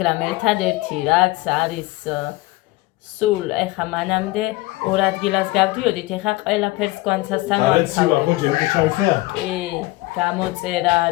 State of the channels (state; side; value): quieter; right; 20.3 dB